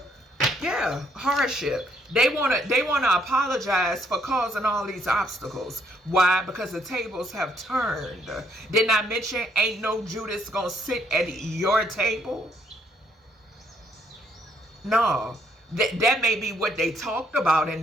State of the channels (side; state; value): both; normal; correlation 0.69